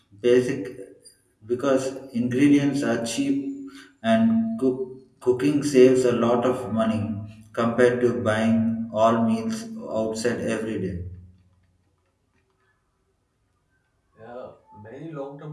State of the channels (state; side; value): identical; both; correlation 1.00